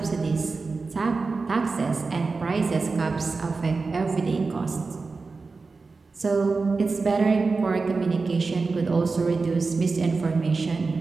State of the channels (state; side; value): quieter; left; 4.1 dB